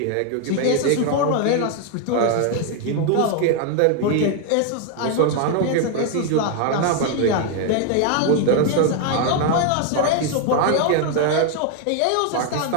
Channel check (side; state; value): both; different; correlation 0.01